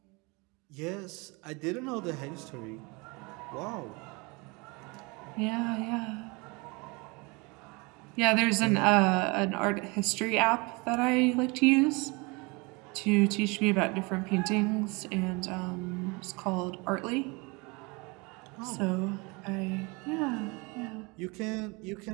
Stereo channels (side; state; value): left; quieter; 27.5 dB